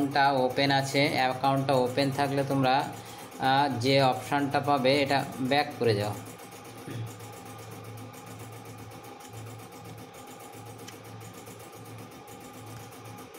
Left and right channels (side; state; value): both; identical; correlation 1.00